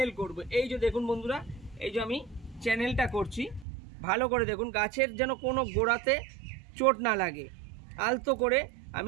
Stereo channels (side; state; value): left; drops out; at 3.7 s